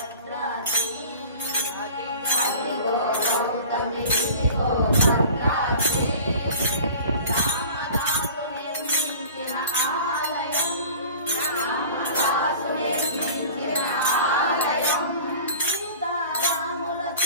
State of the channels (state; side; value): inverted; both; correlation -0.42